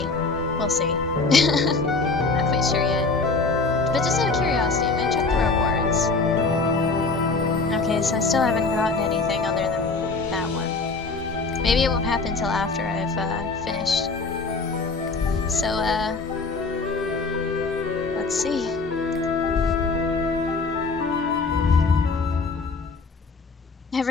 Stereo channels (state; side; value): quieter; right; 4.0 dB